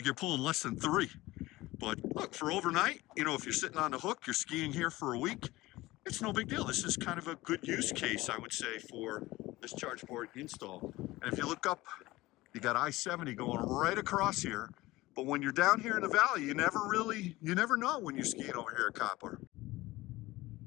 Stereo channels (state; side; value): quieter; right; 18.8 dB